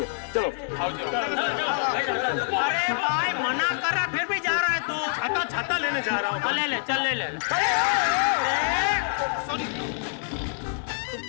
चलो अरे भाई मना कर रहा फिर भी जा रहा है तो। छाता छाता लेने जा रहा हूँ। ले ले चल ले ले। सॉरी।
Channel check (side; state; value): right; silent; 61 dB below the other